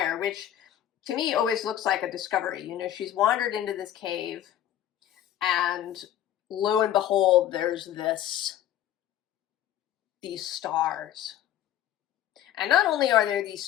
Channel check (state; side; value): quieter; right; 11.6 dB